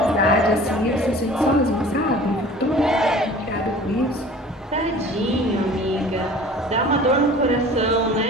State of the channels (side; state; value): both; normal; correlation 0.45